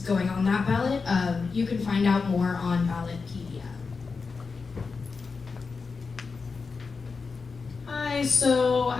going on that ballot. You can find out more on Ballotpedia. Hi, so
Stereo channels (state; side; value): quieter; right; 4.7 dB